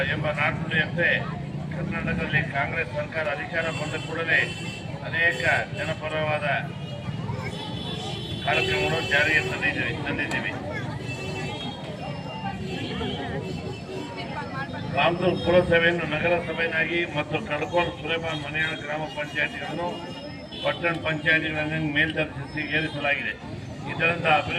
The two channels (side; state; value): both; identical; correlation 1.00